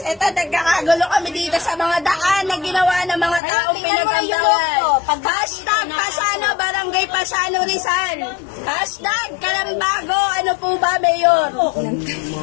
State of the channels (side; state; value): right; drops out; at 3.4 s